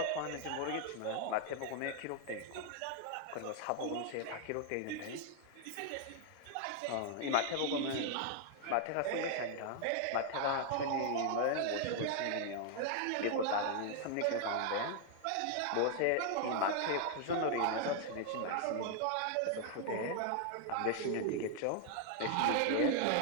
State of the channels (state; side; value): different; both; correlation 0.00